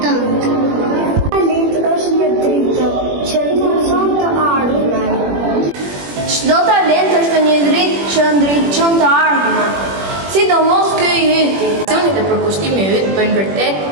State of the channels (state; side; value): late; left; 21 ms